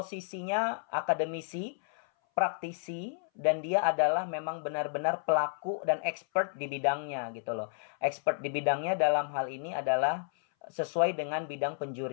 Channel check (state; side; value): silent; right; 57 dB below the other